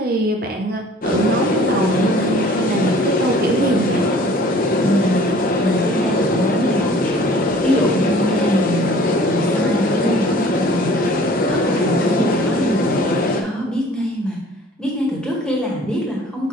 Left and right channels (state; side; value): normal; both; correlation 0.50